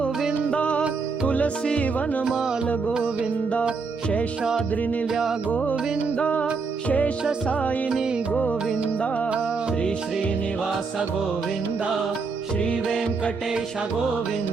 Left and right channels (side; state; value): left; quieter; 4.7 dB